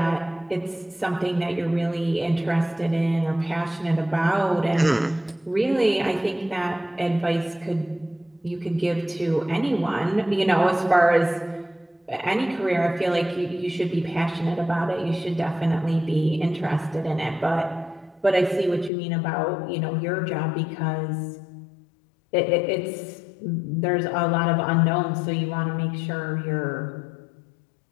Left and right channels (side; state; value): right; drops out; at 18.9 s